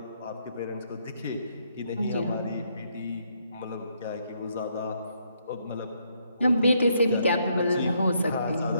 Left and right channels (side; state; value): both; inverted; correlation -0.73